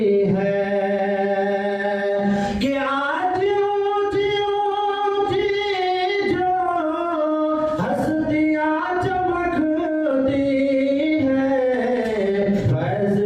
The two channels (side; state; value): both; identical; correlation 1.00